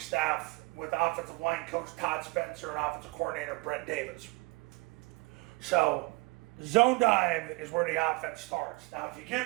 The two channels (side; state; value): left; quieter; 25.6 dB